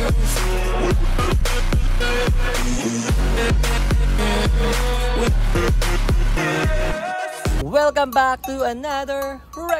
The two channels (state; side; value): identical; both; correlation 1.00